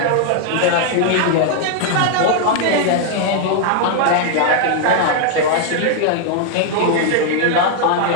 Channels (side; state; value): both; different; correlation 0.00